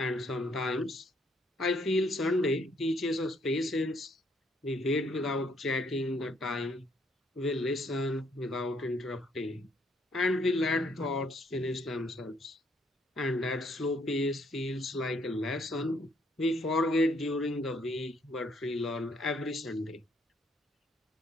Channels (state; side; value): normal; both; correlation 0.68